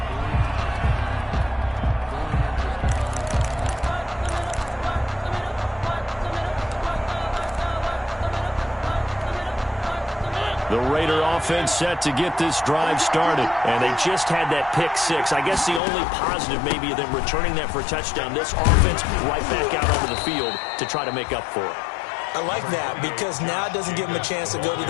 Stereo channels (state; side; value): drops out; right; at 15.8 s